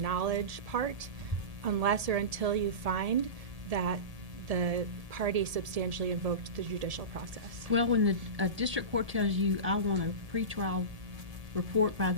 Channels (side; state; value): left; late; 1.7 ms